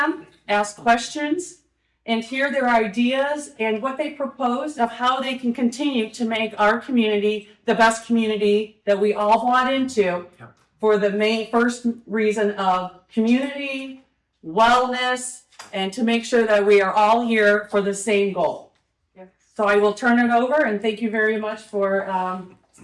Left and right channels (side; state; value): both; identical; correlation 1.00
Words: ask questions, and hear their ideas and what they propose of how they can continue to make our community the best community that we all bought into for the main first reason of community, wellness, and to make sure that we are all here for the same goal. So I will turn it over, and thank you very much for